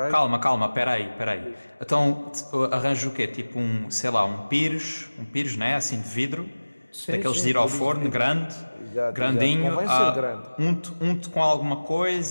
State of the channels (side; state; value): both; inverted; correlation -1.00